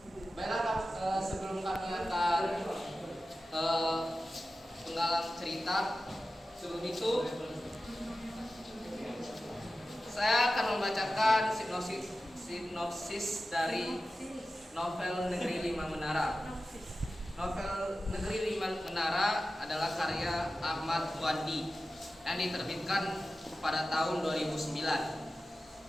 Baiklah, sebelum kami akan penggalang cerita, sebelum itu saya akan membacakan sinopsis dari novel Negeri Lima Menara. Novel Negeri Lima Menara adalah karya Ahmad Wandi yang diterbitkan pada tahun 2009.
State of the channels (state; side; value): normal; both; correlation 0.94